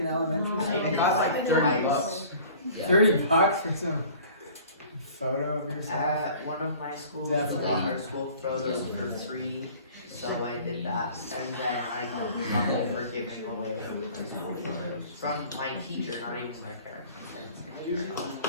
elementary No. I school? did It costs like like 30 bucks. Yeah. $30 for some photo of yourself? One of my schools Definitely. got our school photos for free, so I did that. And then I got trouble for giving away my school photos from my teacher, not even my parents.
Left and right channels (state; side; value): inverted; both; correlation -0.47